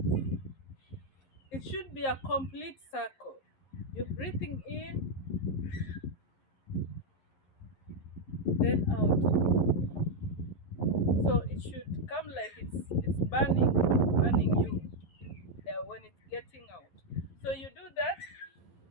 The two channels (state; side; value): late; right; 11 ms